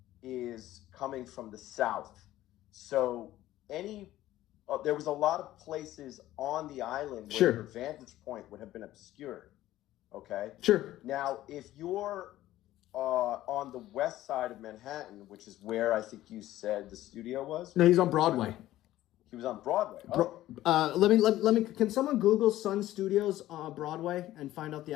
is coming from the south. So there was a lot of places on the island where your Sure. vantage point would have been obscured. Okay. Sure. Now, if you're on the west side of Manhattan, which is where I think you said the studio was. No, he's on Broadway. He was on Broadway. Oh, Let me. Can someone Google Sun Studios Broadway and find out the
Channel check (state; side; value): quieter; right; 14.6 dB